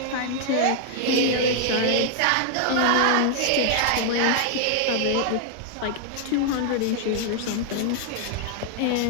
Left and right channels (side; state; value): both; different; correlation 0.00